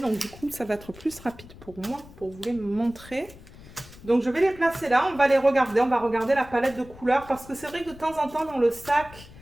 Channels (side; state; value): left; noise; rumble, 19 dB below the sound